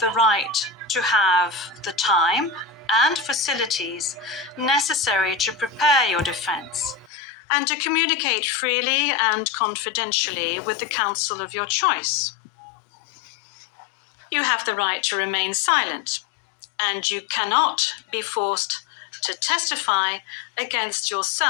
right to have the time and facilities necessary to prepare your defense and to communicate freely and confidentially with the counsel of your choice. You have the right to remain silent, and you cannot be forced to testify against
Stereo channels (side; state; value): right; drops out; at 7.1 s